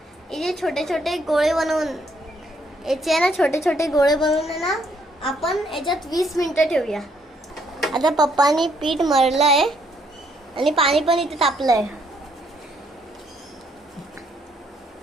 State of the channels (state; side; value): normal; both; correlation 0.70